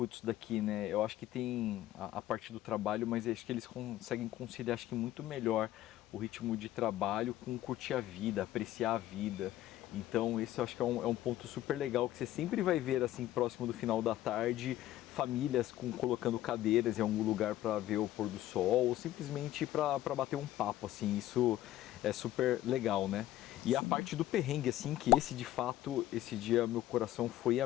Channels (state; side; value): quieter; right; 14.1 dB